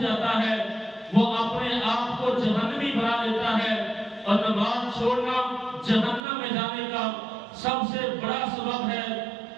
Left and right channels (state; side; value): drops out; left; at 6.2 s